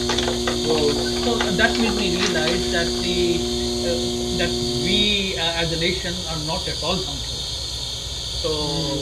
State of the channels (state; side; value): identical; both; correlation 1.00